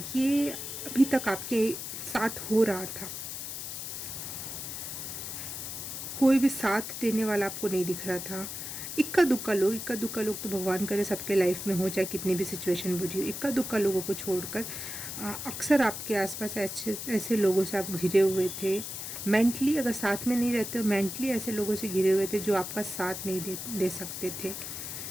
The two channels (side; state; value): left; noise; hiss, 7 dB below the sound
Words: अभी तक आपके साथ हो रहा था। कोई भी साथ देने वाला आपको नहीं दिख रहा था। इक्का दुक्का लोग तो भगवान करे सबके लाइफ में हो, चाहे कितनी भी सिचुएशन बुरी हो, इक्का दुक्का लोगों को छोड़कर अक्सर आपके आसपास ऐसे ऐसे लोगों से आप घिरे हुए थे। मेंटली अगर साथ में नहीं रहते हो, मेंटली ऐसे लोगों से घिरे हुए थे जो आपका साथ नहीं दे सकते थे।